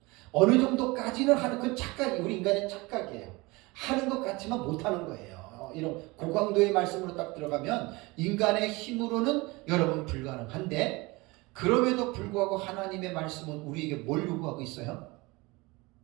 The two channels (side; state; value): left; quieter; 23.7 dB